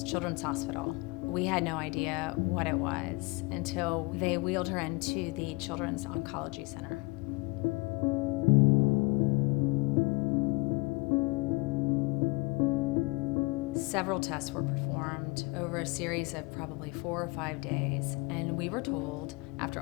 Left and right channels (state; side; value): quieter; right; 26.3 dB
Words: Children's Hospital. We had no idea what it was until they wheeled her into the Children's Oncology Center. Several tests were performed over a series of probably 4 or 5 days, and we were told, after